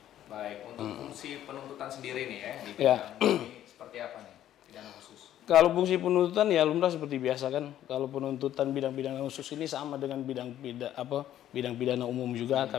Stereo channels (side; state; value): right; quieter; 11.9 dB